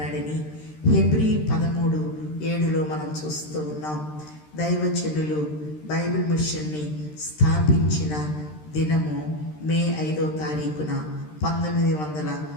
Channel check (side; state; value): right; late; 13 ms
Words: హెబ్రీ 13:7 మనం చూస్తూ ఉన్నాం. దైవజనులు బైబిల్ మిషన్ని స్థాపించిన దినము మే 5వ తారీఖున